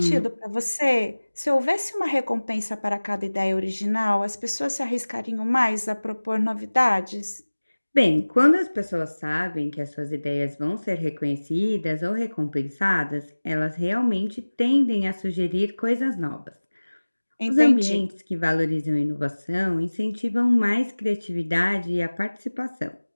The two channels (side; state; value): both; inverted; correlation -1.00